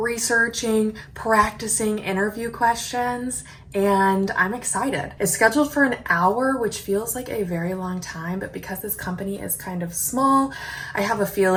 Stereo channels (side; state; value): both; identical; correlation 1.00